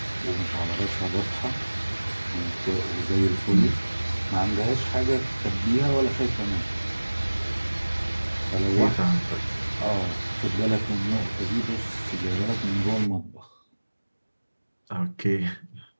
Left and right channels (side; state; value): both; inverted; correlation -1.00